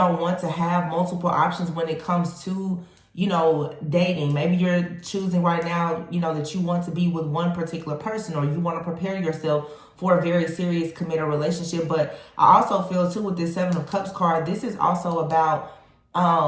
want to have multiple options when it comes to, you know, dating. Maybe you're choosing right now, you know, that you want to be with one particular person, or you want to prepare yourself for a very serious committed relationship. But I also feel too with this Seven of Cups card, this is also about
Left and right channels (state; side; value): identical; both; correlation 1.00